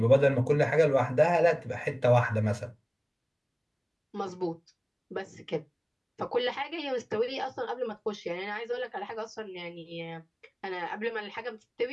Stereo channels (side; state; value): both; identical; correlation 1.00